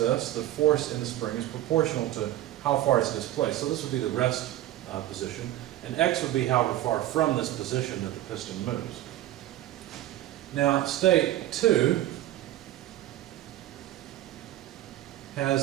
the force in the spring is proportional to how far it's displaced. So this would be the rest position, and X would be however far from this position that the piston moves. Now, state 2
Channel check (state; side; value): quieter; left; 14.1 dB